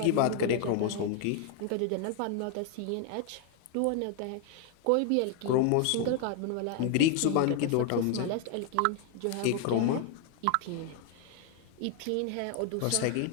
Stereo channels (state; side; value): different; both; correlation 0.00